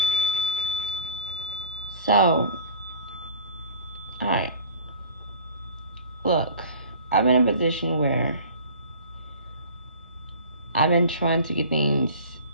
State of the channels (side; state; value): both; inverted; correlation -0.43